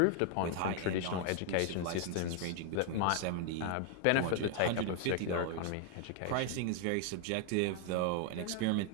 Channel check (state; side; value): different; both; correlation 0.00